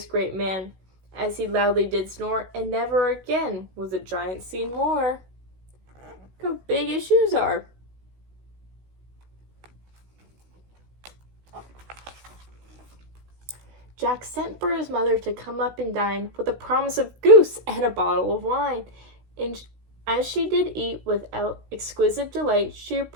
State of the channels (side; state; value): left; late; 16 ms